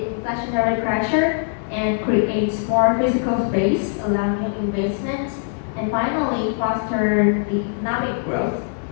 inflationary pressure and create more physical space, allow new investment, and finally foster economic growth.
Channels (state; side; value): silent; right; 65 dB below the other